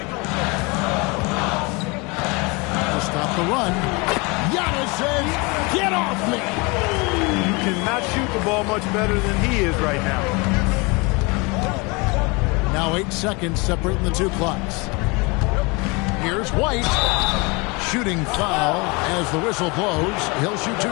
To stop the run. Giannis says, get off me. You cannot shoot the ball much better than he is right now. Now 8 seconds separating the 2 clocks. Here's White. Shooting foul as the whistle blows. He'll shoot 2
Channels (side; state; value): right; quieter; 27.9 dB